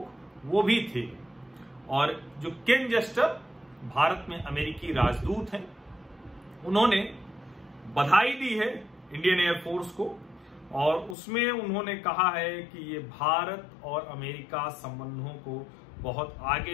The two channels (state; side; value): drops out; right; at 11.2 s